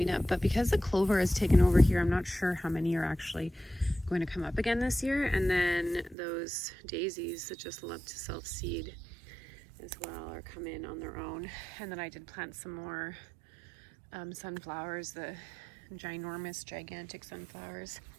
up, but because the clover has taken over here, I'm not sure how many are actually going to come up again this year. And then those daisies that just love to self-seed as well or come in on their own. And then I did plant some more sunflowers, the gigantic sunflowers.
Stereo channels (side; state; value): left; drops out; at 6.2 s